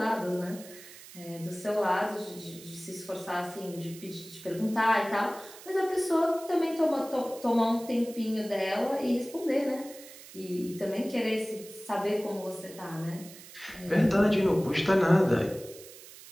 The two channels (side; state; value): right; noise; hiss, 17 dB below the sound